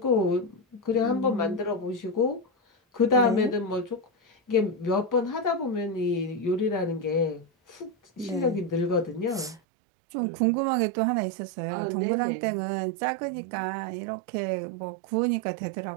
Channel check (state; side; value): drops out; left; at 9.6 s